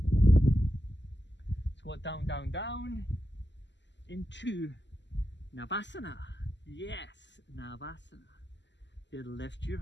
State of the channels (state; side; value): late; right; 0.52 ms